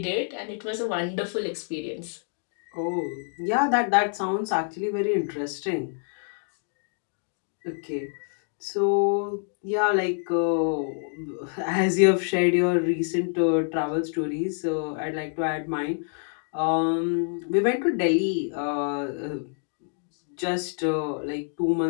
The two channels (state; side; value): silent; right; 60 dB below the other